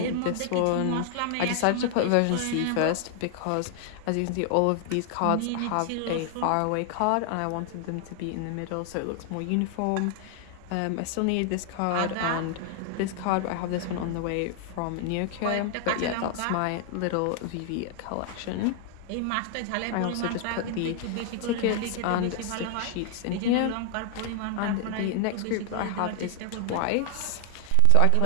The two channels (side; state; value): both; different; correlation 0.00